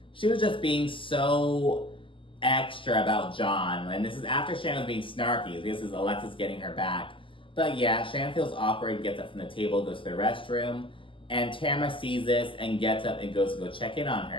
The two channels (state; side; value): late; right; 0.25 ms